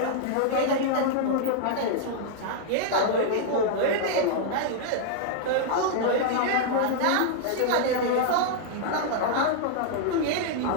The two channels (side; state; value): both; different; correlation -0.01